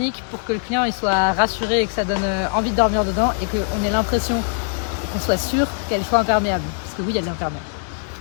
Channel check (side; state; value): right; silent; 62 dB below the other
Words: pour que le client il soit rassuré et que ça donne envie de dormir dedans et qu'on ait l'impression qu'on soit sûr qu'elle soit imperméable. Parce que oui, elle est imperméable.